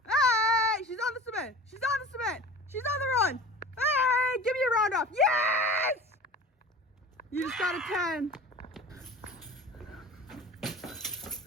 Hey! She's on the cement. She's on the cement. She's on the run. Hey! Give me a round off. Yes! You just got a 10.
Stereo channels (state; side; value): normal; both; correlation 0.39